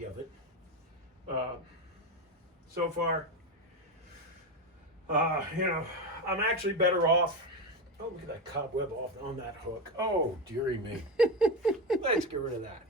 of it, so far, I'm actually better off. Oh, look at that cobweb off on that hook. Oh, dearie me. Let's get rid of that.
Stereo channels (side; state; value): both; normal; correlation 0.16